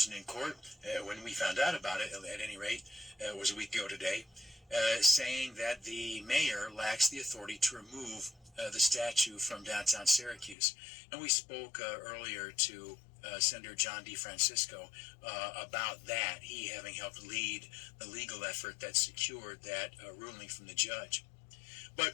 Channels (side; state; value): right; drops out; at 10.6 s